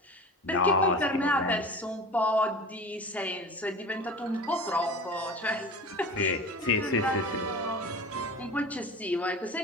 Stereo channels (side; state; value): both; normal; correlation 0.34